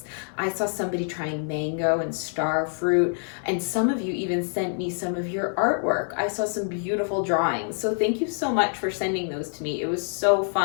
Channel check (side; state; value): right; silent; digital silence